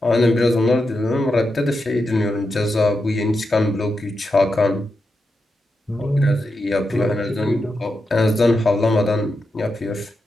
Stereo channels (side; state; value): both; normal; correlation 0.87